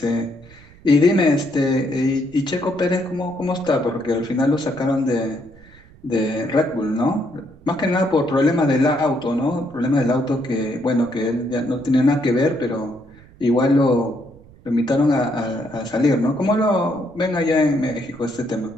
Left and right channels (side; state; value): right; noise; rumble, 24 dB below the sound